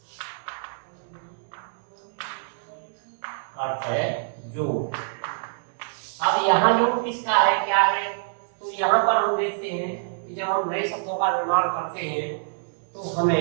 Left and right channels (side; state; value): left; silent; digital silence